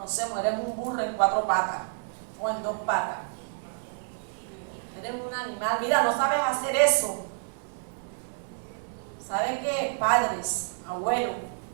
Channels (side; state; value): left; silent; digital silence